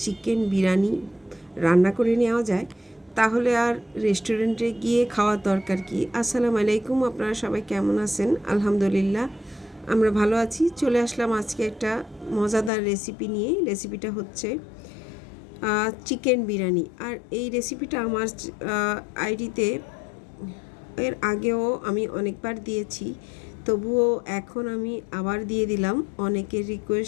চিকেন বিরিয়ানি রান্না করে নেওয়া যায় তাহলে আর রেস্টুরেন্টে গিয়ে খাওয়ার দরকার কি। আসসালামু আলাইকুম, আপনারা সবাই কেমন আছেন? আলহামদুলিল্লাহ আমরা ভালো আছি। চলে আসলাম আজকে একটা মজাদার রেসিপি নিয়ে। রেসিপিটা হচ্ছে চিকেন বিরিয়ানি। আর এই রেসিপিটা আমার আইডিতে এর আগেও আমি অনেকবার দিয়েছি, তবুও এখন আমি আবার দিয়ে দিলাম অনেকের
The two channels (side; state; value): right; drops out; at 12.7 s